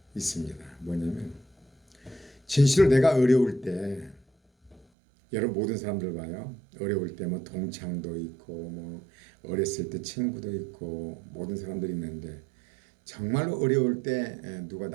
있습니다. 뭐냐면 진실로 내가 어려울 때 여러분 모든 사람들 봐요. 어려울 때 뭐 동창도 있고 뭐 어렸을 때 친구도 있고 모든 사람들이 있는데 정말로 어려울 때 누가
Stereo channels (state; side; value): drops out; left; at 4.9 s